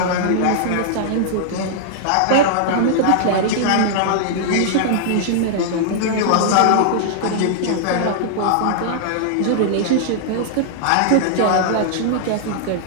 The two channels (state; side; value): different; both; correlation -0.01